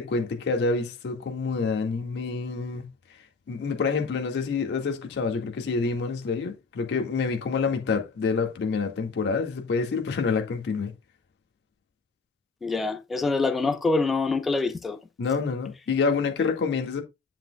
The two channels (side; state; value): right; quieter; 4.1 dB